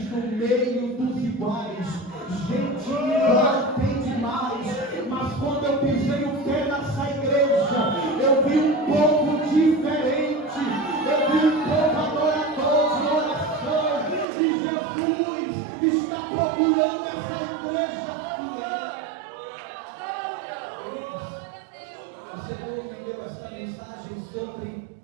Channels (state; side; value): drops out; left; at 14.2 s